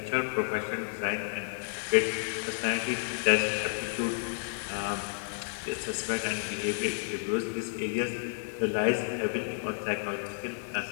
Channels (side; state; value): right; silent; digital silence